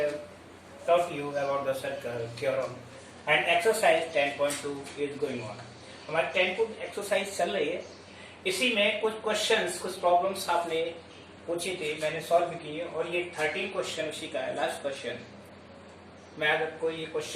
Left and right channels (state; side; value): identical; both; correlation 1.00